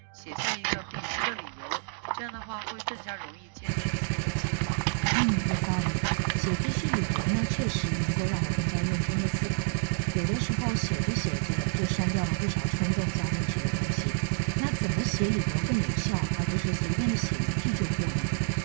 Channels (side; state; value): left; silent; 59 dB below the other